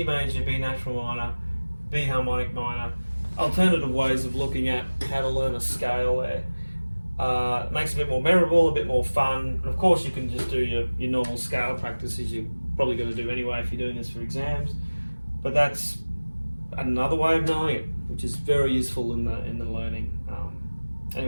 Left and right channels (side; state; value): both; inverted; correlation -1.00